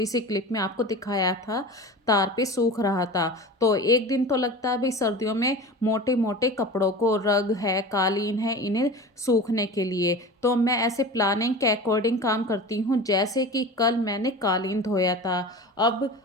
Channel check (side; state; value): both; normal; correlation 0.33